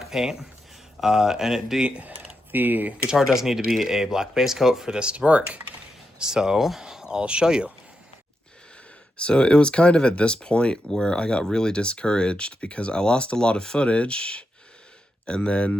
paint. And the guitar does need to be a black base coat for this to work. So I'll show you. So it was kind of at this point where I got really discouraged because I lost a lot of footage and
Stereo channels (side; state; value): both; normal; correlation 0.85